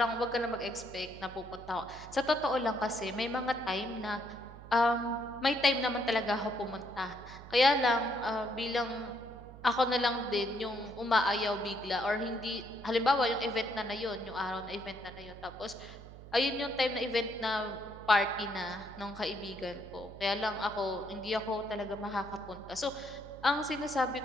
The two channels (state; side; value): noise; right; hum, 16 dB below the sound